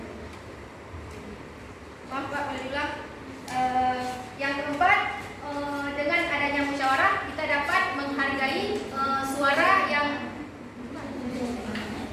maaf Pak, boleh diulang. Yang keempat, dengan adanya musyawarah kita dapat menghargai suara yang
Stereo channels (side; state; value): both; identical; correlation 1.00